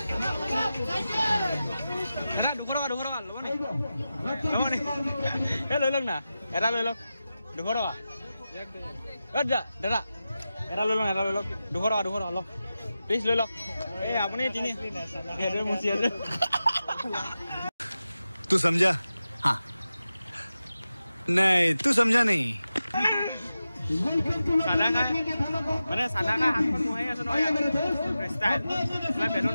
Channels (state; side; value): inverted; both; correlation -0.93